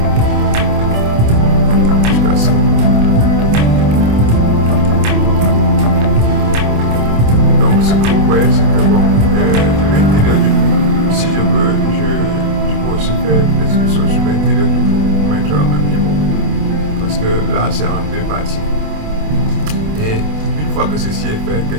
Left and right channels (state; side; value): late; left; 27 ms